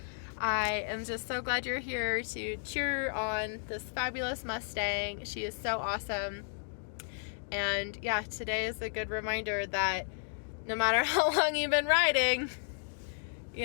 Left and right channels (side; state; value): right; silent; digital silence